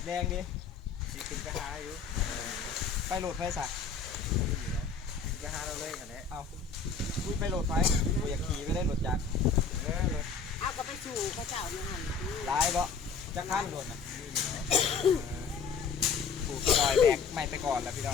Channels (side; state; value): right; quieter; 5.4 dB